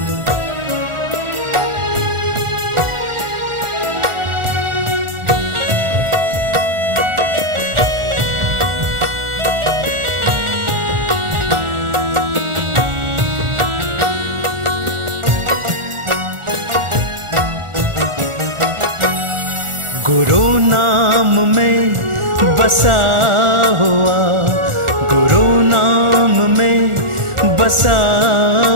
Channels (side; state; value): left; late; 1.4 ms